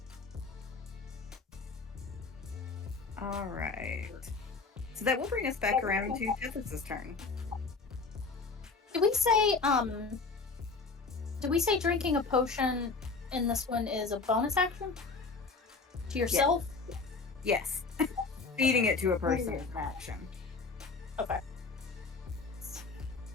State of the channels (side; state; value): right; quieter; 4.2 dB